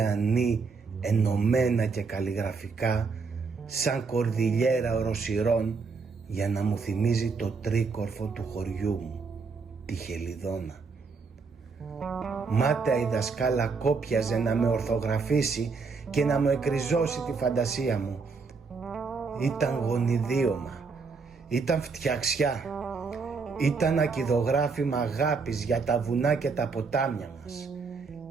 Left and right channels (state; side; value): quieter; left; 4.7 dB